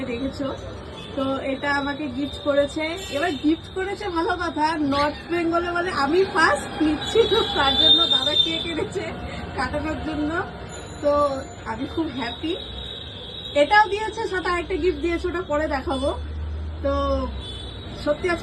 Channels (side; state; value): both; identical; correlation 1.00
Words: দেখেছো। তো এটা আমাকে গিফট করেছে। এবার গিফট করেছে ভালো কথা, নর্থ বেঙ্গলে বলে আমি ফার্স্ট নিচ্ছি, তো তার জন্য দাদা কেক এনেছে কাটানোর জন্য। তো আমি খুব হ্যাপি। এটাও দিয়েছে, সাথে আরেকটা গিফট দিয়েছে, ওটা পরে দেখাবো। তো সত্যি